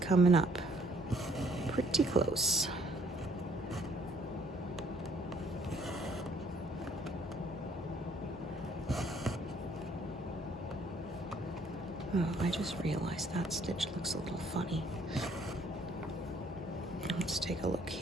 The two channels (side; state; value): both; normal; correlation 0.63